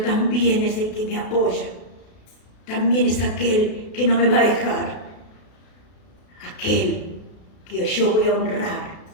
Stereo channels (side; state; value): right; late; 32 ms